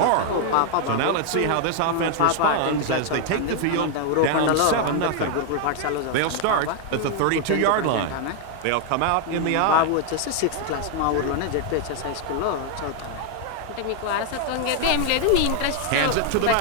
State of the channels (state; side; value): different; both; correlation 0.00